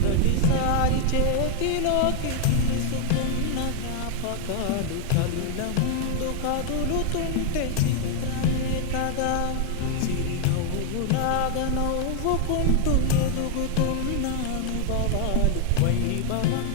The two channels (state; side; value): different; both; correlation 0.00